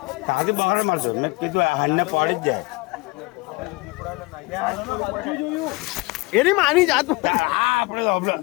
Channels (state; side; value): quieter; right; 24.7 dB